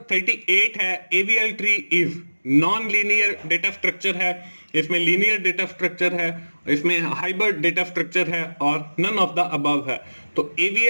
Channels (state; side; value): inverted; both; correlation -1.00